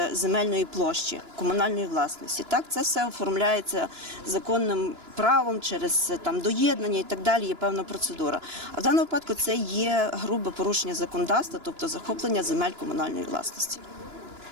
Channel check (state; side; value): late; left; 2.9 ms